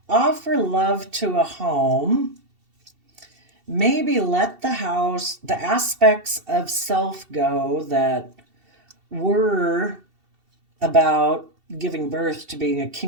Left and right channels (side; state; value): left; late; 2.7 ms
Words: offer love to a home, maybe let the aspects of self go that were about giving birth to being a